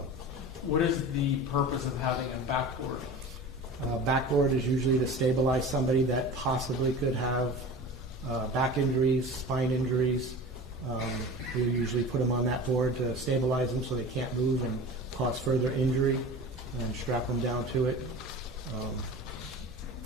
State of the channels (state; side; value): normal; both; correlation 0.35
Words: What is the purpose of having a backboard? Backboard is usually to stabilize somebody that possibly could have back injuries, spine injuries. We usually put them on that board to stabilize them so they can't move and cause further injury, and strap them down to it.